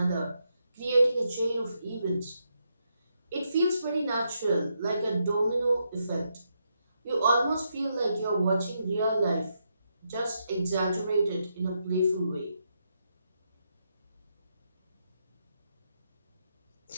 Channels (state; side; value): inverted; both; correlation -0.81